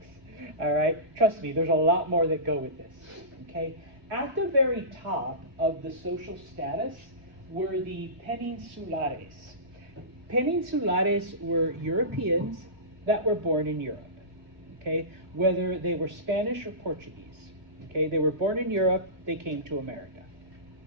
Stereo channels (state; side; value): late; left; 2.7 ms